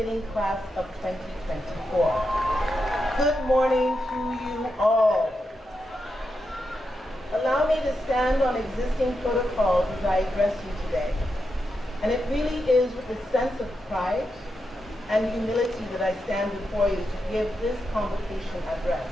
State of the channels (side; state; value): both; normal; correlation 0.86